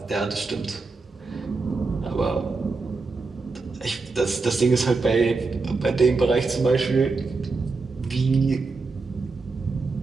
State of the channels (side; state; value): left; quieter; 4.0 dB